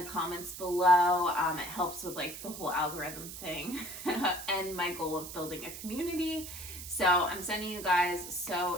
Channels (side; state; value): right; noise; hiss, 10 dB below the sound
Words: comments below. It helps with like the whole algorithm thing and my goal of building a community. So I'm sending you guys